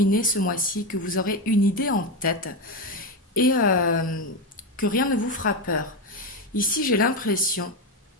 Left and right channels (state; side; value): normal; both; correlation 0.12